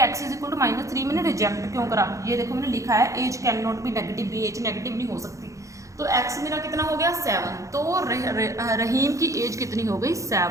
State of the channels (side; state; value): left; late; 0.15 ms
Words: = -3 मैंने रिजेक्ट क्यों करा। ये देखो मैंने लिखा है age can not be negative, भी एज नेगेटिव नहीं हो सकती। तो x मेरा कितना हो गया 7, तो रहीम की एज कितनी हो गई